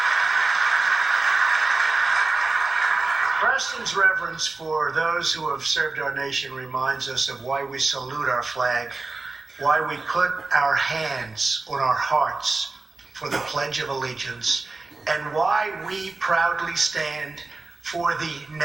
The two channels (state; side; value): quieter; left; 3.5 dB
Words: Preston's reverence for those who have served our nation reminds us of why we salute our flag, why we put our hands on our hearts for the Pledge of Allegiance, and why we proudly stand for the